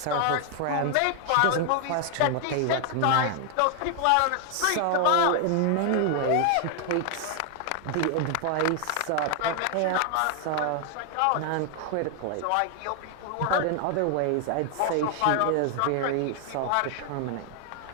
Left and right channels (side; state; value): both; different; correlation 0.00